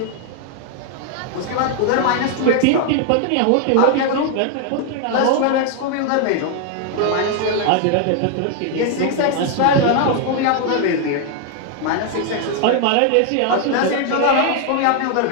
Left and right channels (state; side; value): different; both; correlation 0.00